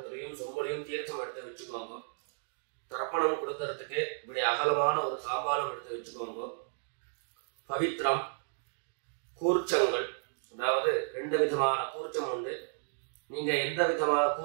சொம்பலையும் தீர்த்தம் எடுத்து வச்சுக்கோங்க. தர்ப்பணம் கொடுக்கறதுக்கு இப்படி அகலமான ஒரு தாம்பாலம் எடுத்து வச்சுக்கோங்க. பவித்திரம், கூர்ச்சங்கள், அதாவது 2 விதமான கூர்ச்சம் உண்டு. நீங்க எந்த விதமான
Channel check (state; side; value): silent; left; digital silence